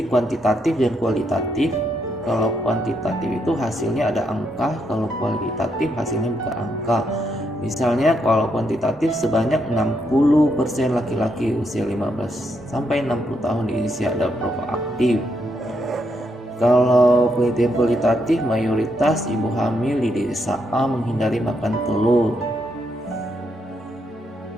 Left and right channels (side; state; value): both; normal; correlation 0.79